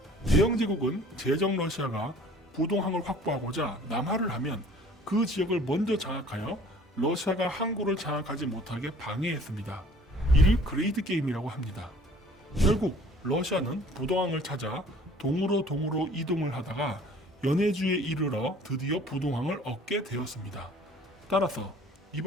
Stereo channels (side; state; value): both; normal; correlation 0.52